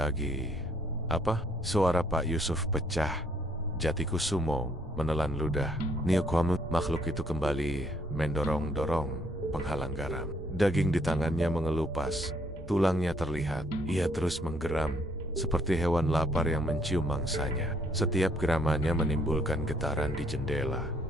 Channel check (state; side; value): normal; both; correlation 0.67